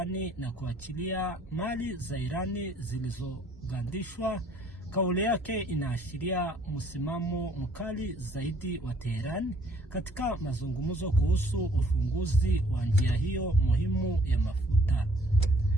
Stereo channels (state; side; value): normal; both; correlation 0.60